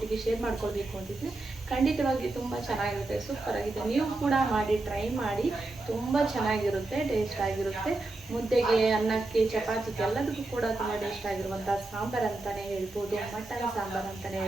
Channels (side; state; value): left; quieter; 3.0 dB